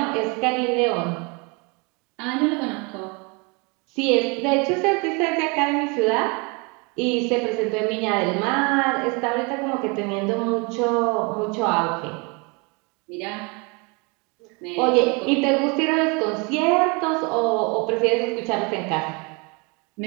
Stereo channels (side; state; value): left; quieter; 30.6 dB